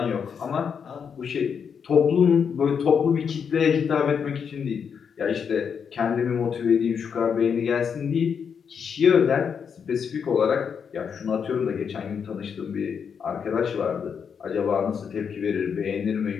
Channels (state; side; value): quieter; right; 6.8 dB